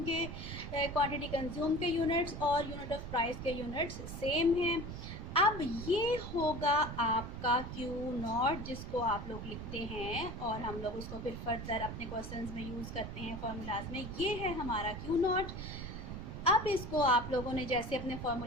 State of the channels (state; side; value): noise; right; rumble, 7 dB below the sound